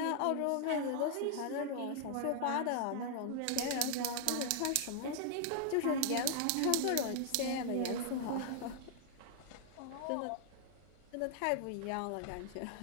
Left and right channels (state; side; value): different; both; correlation 0.00